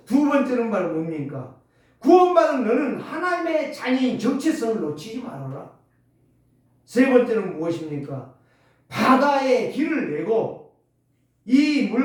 두 번째는 바로 뭡니까? 구원받은 너는 하나님의 자녀인 정체성을 놓치지 말아라. 세 번째는 무엇입니까? 바다에 길을 내고 이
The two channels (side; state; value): both; identical; correlation 1.00